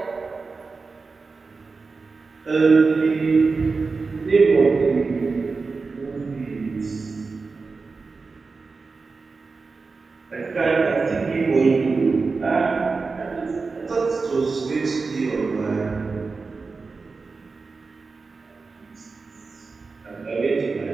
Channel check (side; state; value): left; quieter; 4.3 dB